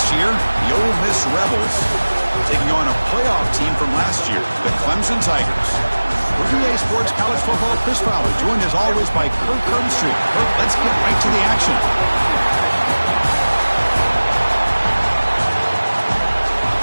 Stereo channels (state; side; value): inverted; both; correlation -1.00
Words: year, the Ole Miss Rebels, taking on a playoff team from last year, the Clemson Tigers. We're EA Sports College Football Chris Fowler, joined as always by Kirk Herbstreit. Kirk, let's get right to the action.